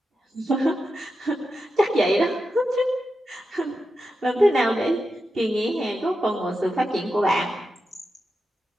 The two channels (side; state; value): both; normal; correlation 0.89